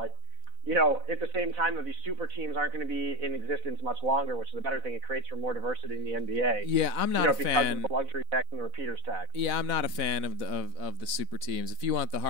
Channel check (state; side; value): late; left; 4.0 ms